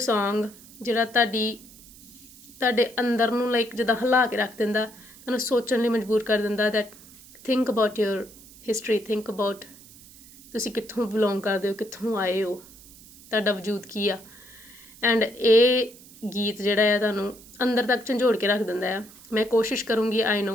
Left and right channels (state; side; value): noise; right; hiss, 21 dB below the sound